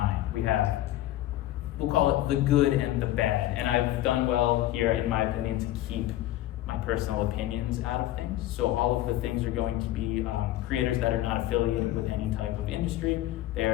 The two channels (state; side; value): quieter; right; 14.5 dB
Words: We have, we'll call it the good and the bad, and I've done well here, in my opinion, to keep my personal opinions out of things. So all of the things are going to be creators that are not affiliated with any type of industry. They